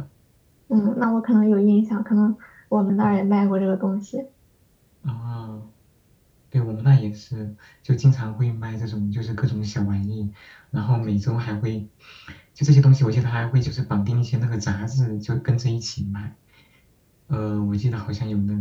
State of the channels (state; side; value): identical; both; correlation 1.00